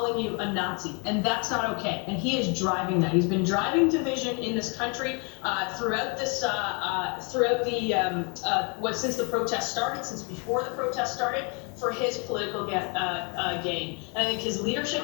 you a Nazi, and that's not okay. And he is driving that. He's been driving division in this country since the protest started, since before the protest started, for his political gain. And I think his leadership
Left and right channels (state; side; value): quieter; right; 34.5 dB